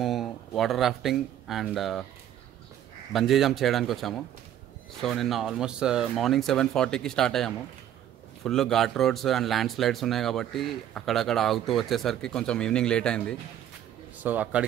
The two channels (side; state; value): left; quieter; 10.9 dB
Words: water rafting and bungee jump చేయడానికి వచ్చాము. సో నిన్న ఆల్మోస్ట్ మార్నింగ్ 7:40కి స్టార్ట్ అయ్యాము. Full ghat roads and land slides ఉన్నాయి కాబట్టి అక్కడక్కడ ఆగుతూ వచ్చేసరికి కొంచెం ఈవినింగ్ లేట్ అయింది. సో